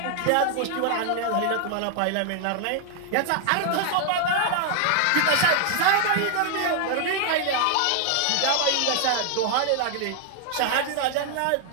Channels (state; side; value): different; both; correlation 0.00